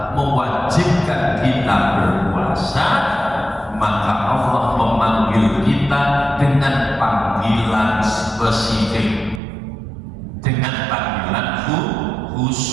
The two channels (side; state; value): left; drops out; at 9.4 s